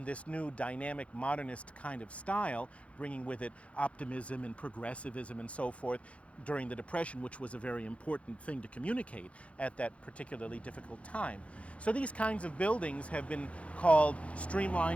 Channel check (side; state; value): right; late; 0.063 ms